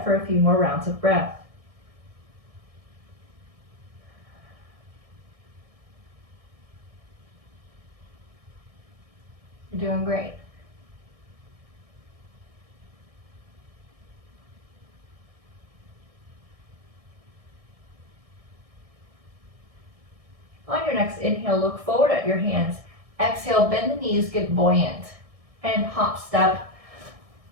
for a few more rounds of breath. You're doing great. On your next inhale, look forward at your hands. Exhale, bend the knees, get buoyant. And hop, step,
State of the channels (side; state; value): left; late; 1.6 ms